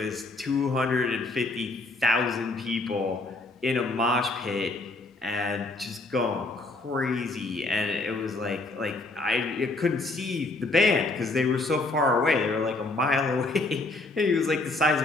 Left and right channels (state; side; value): quieter; right; 3.1 dB